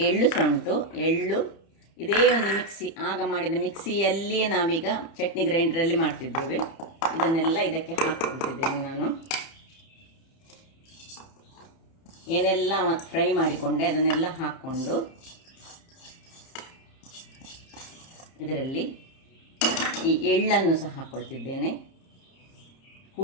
ಎಳ್ಳು ಸಹ ಉಂಟು. ಎಳ್ಳು ಇದೇ ಒಂದು ಮಿಕ್ಸಿ, ಆಗ ಮಾಡಿದ ಮಿಕ್ಸಿಯಲ್ಲಿಯೇ ನಾವೀಗ ಚಟ್ನಿ ಗ್ರೈಂಡರಲ್ಲಿ ಮಾಡ್ತಿದ್ದೇವೆ. ಇದನ್ನೆಲ್ಲ ಇದಕ್ಕೆ ಹಾಕ್ಕೊಳ್ತಿದ್ದೇನೆ ನಾನು. ಏನೆಲ್ಲ ಫ್ರೈ ಮಾಡಿಕೊಂಡೆ ಅದನ್ನೆಲ್ಲ ಹಾಕ್ಕೊಂಡು ಇದರಲ್ಲಿ ಈ ಎಳ್ಳನ್ನು ಸಹ ಹಾಕ್ಕೊಳ್ತಿದ್ದೇನೆ.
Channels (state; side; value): late; right; 30 ms